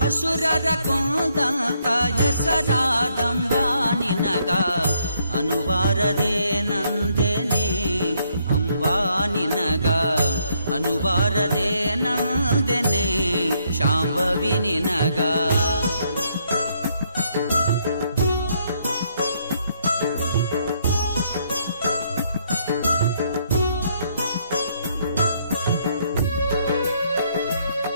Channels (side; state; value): both; inverted; correlation -0.71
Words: ಅಸುರರ ಕೊಂದಂತ ಹೆಸರಾದಂಬಾ ನಿನಗ ಅನುಬಾರದೆ ನಂದೆನೆ ಅಂಬಾ ನಿನಗ ಅನುಬಾರದೆ ನಂದೆನೆ ಶಾಂಭವಿ ನಿನಗ